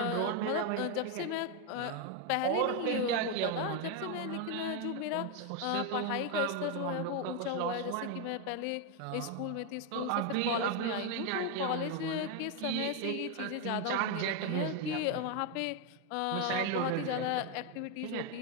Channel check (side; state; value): both; different; correlation 0.01